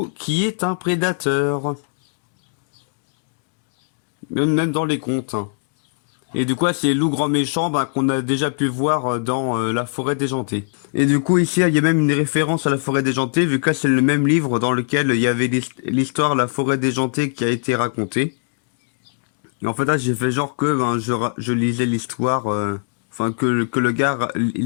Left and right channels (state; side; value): silent; right; digital silence